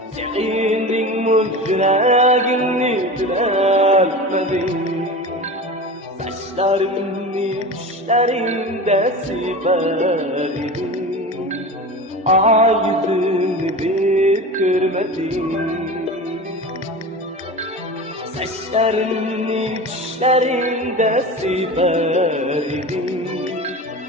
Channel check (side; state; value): both; normal; correlation 0.31